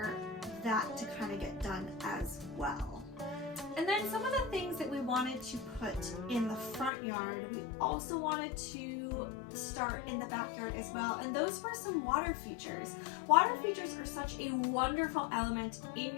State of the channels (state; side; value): drops out; right; at 6.9 s